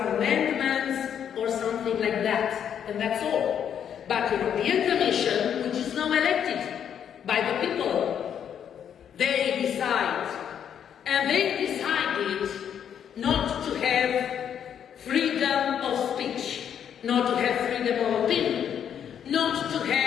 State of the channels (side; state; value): right; quieter; 8.7 dB